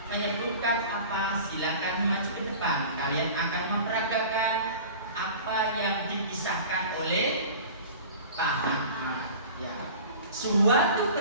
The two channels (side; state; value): both; inverted; correlation -0.39